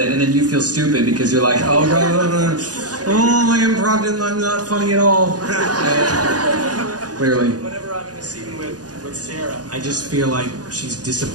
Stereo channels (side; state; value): left; late; 0.68 ms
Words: and then you feel stupid because you're like, oh god, oh my improv, I'm not funny at all. Clearly. Whenever I'm in a scene with Sarah, I just feel like she's